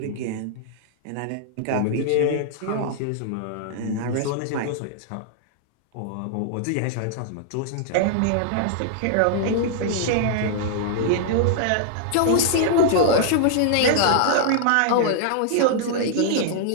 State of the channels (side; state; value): both; different; correlation -0.01